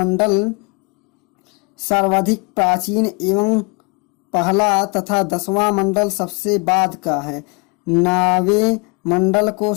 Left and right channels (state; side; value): quieter; right; 31.2 dB